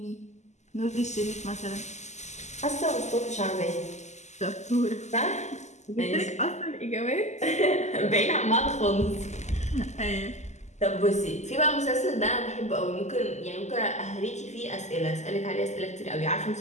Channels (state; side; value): late; right; 0.33 ms